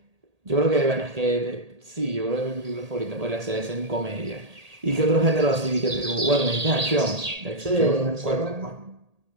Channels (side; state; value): left; late; 1.8 ms